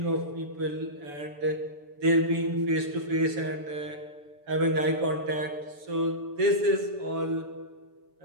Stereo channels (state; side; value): late; left; 7.0 ms